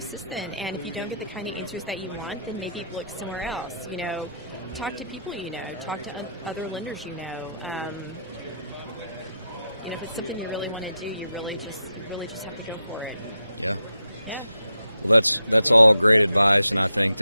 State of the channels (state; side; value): inverted; both; correlation -0.80